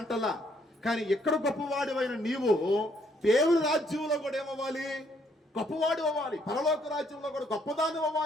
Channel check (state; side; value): normal; both; correlation 0.69